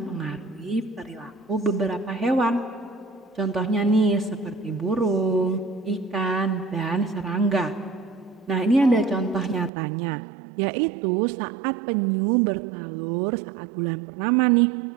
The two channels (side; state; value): left; drops out; at 9.7 s